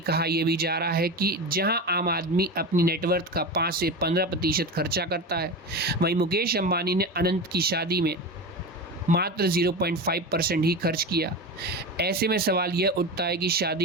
यह भी जा रहा है कि जहां आम आदमी अपनी नेटवर्थ का 5 से 15% खर्चा करता है, वहीं मुकेश अंबानी ने अनंत की शादी में मात्र 0.5% ही खर्च किया। ऐसे में सवाल यह उठता है कि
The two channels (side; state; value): both; normal; correlation 0.24